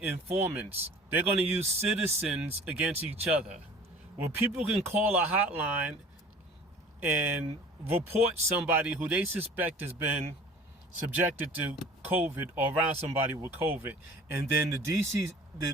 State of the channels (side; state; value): both; normal; correlation 0.46